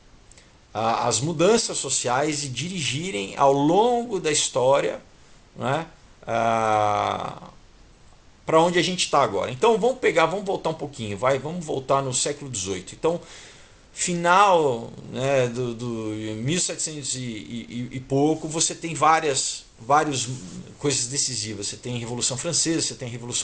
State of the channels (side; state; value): both; identical; correlation 1.00